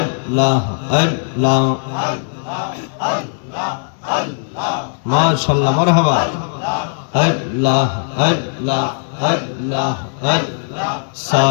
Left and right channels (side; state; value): right; silent; digital silence